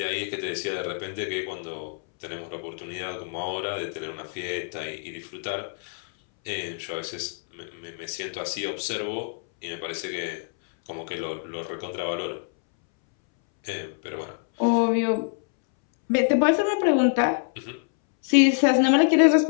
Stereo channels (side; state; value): right; silent; 61 dB below the other